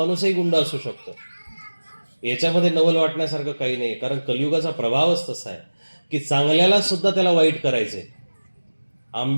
गुंड असू शकतो, याच्यामध्ये नवल वाटण्यासारखं काही नाही. कारण कलियुगाचा प्रभावच तसा आहे की चांगल्याला सुद्धा त्याला वाईट करायचंय.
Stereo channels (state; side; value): inverted; both; correlation -1.00